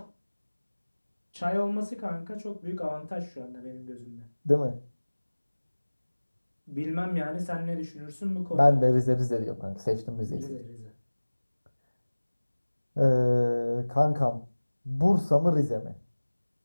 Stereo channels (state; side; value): inverted; both; correlation -1.00